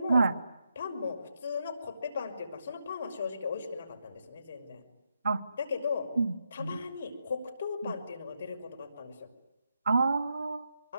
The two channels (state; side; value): inverted; both; correlation -0.83